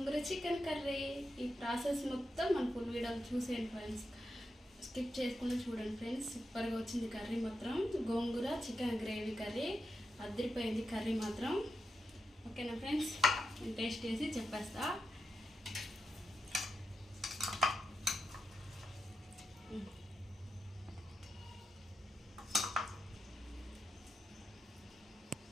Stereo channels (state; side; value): normal; both; correlation 0.87